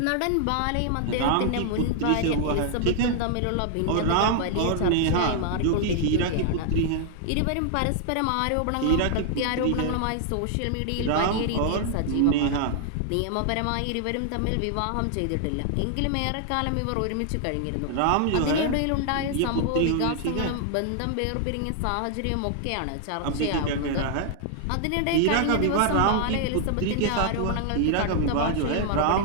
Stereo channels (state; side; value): different; both; correlation 0.00